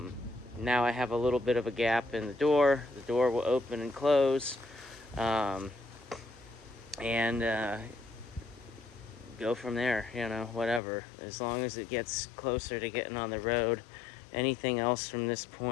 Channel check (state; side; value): drops out; right; at 10.8 s